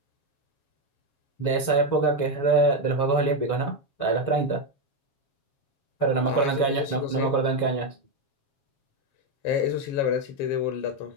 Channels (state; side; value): late; right; 7.3 ms